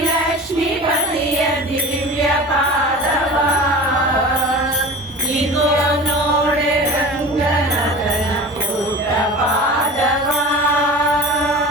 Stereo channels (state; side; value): normal; both; correlation 0.36